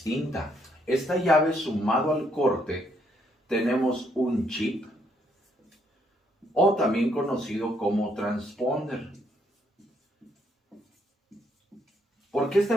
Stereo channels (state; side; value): normal; both; correlation 0.72